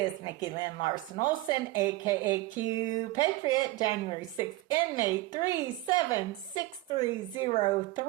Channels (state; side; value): quieter; left; 18.2 dB